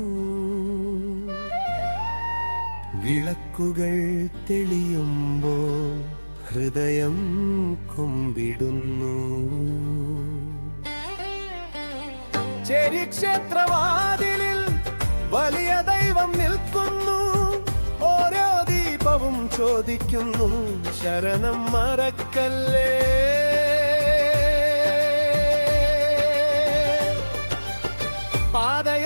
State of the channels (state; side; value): inverted; both; correlation -1.00